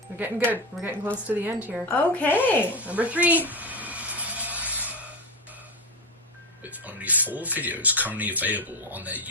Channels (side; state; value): both; normal; correlation 0.16